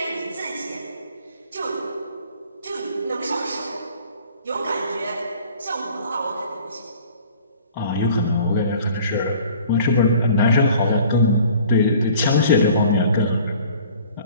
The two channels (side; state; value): both; inverted; correlation -0.50